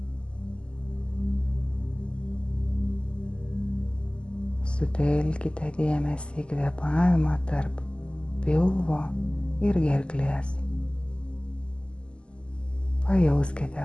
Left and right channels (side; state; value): right; late; 0.051 ms